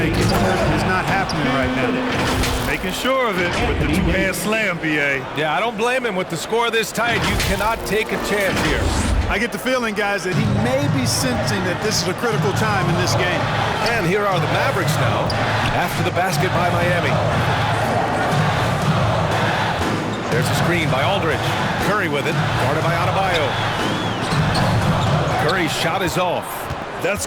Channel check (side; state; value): both; identical; correlation 1.00